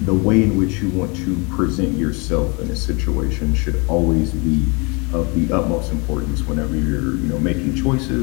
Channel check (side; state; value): right; quieter; 30.6 dB